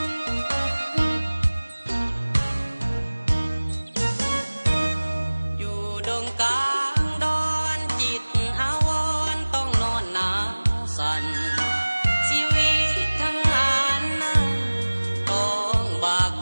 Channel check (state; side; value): inverted; both; correlation -1.00